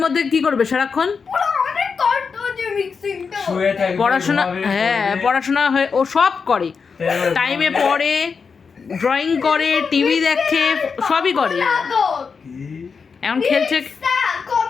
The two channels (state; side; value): quieter; right; 5.5 dB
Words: কি করবে সারাক্ষণ? পুরো অনেক কষ্ট হচ্ছে মিক্সিংটা। শুয়ে থাকবে, পড়াশোনা, ঘুমাবে, হ্যাঁ পড়বে। পড়াশোনা হয়ে ও সব করে, তাই টাইমে পড়ে, ড্রয়িং করে, টিভি দেখে, সবই করে। লাগো। কি? এখন খেলছে। রিক্সা